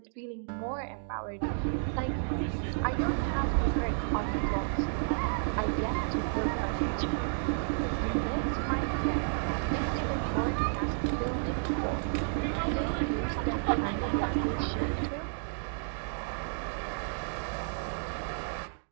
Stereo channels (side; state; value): left; silent; digital silence